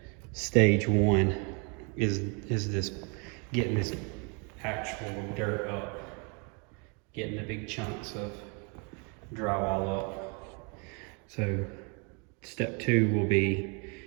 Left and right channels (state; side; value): quieter; left; 34.5 dB